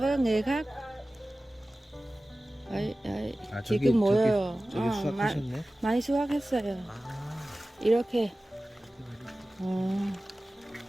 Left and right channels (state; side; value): normal; both; correlation 0.96